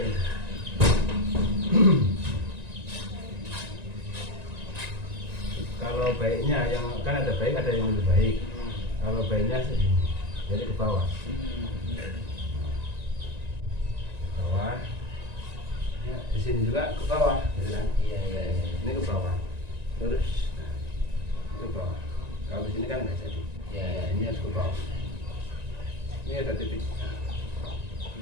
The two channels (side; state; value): left; late; 1.9 ms